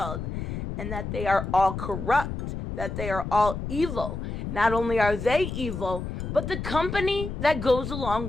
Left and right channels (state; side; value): noise; left; rumble, 5 dB below the sound